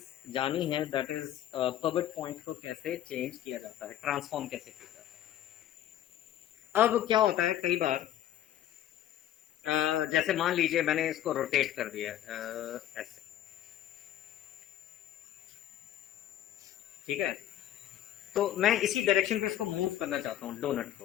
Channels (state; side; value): quieter; right; 12.0 dB